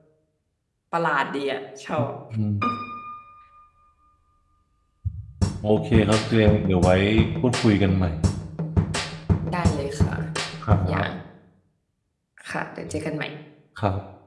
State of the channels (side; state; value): both; identical; correlation 1.00